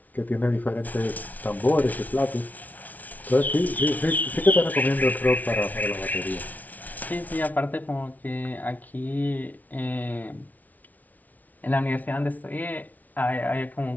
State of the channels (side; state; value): right; late; 0.076 ms